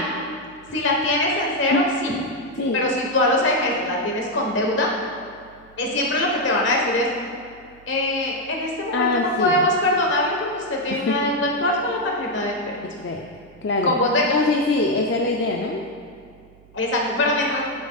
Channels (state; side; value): noise; right; hum, 26 dB below the sound